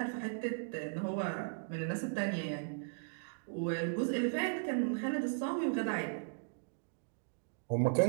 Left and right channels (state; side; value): silent; left; digital silence